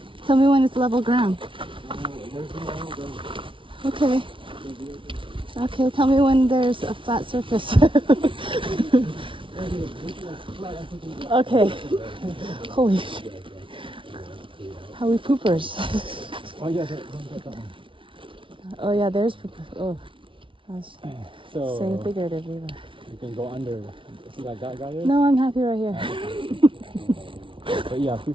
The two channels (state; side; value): late; left; 0.25 ms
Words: Tell me when it's level ground. Okay. Okay, tell me when there's a flat surface. Okay. Holy shit. How we poopers. Oh yeah, that one. Oh yeah, there's poopers. Oh. I was So saying figuratively. But... you can go under. See that guy there? No, I'm happy right here. But yeah,